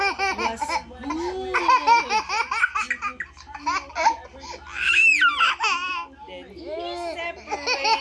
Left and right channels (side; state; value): both; identical; correlation 1.00